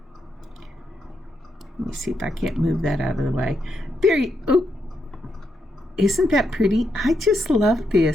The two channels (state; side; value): normal; both; correlation 0.81